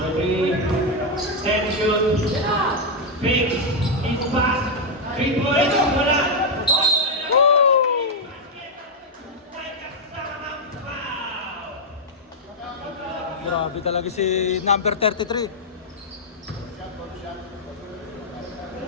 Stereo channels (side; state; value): both; normal; correlation -0.01